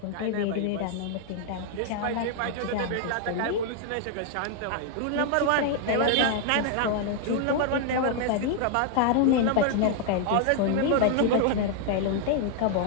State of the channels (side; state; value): both; different; correlation 0.00